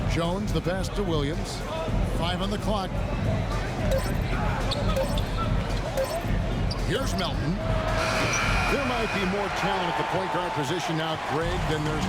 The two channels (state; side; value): identical; both; correlation 1.00